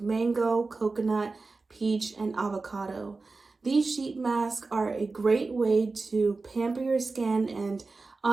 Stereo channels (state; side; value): quieter; left; 3.8 dB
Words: mango, coconut, peach, and avocado. These sheet masks are a great way to pamper your skin and